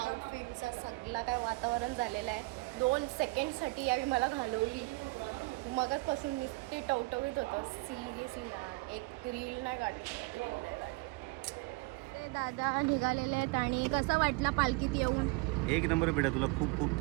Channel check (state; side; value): quieter; left; 25.6 dB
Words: सगळा काय वातावरण झालेलं आहे. 2 सेकंडसाठी यावी मला घालवली. मगाचपासून नुसते टवटवीत होतं. सिरियसली ना एक रील नाही काढली. दादा निघालेले आहेत आणि कसा वाटला पालखीत येऊन? एक नंबर बेटा, तुला खूप खूप